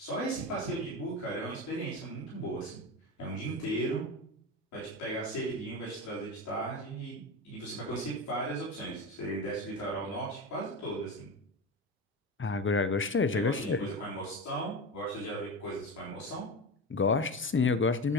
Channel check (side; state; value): both; normal; correlation 0.23